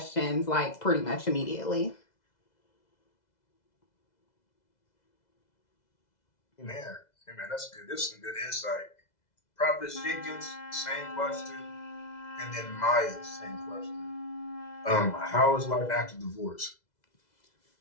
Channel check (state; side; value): late; right; 2.0 ms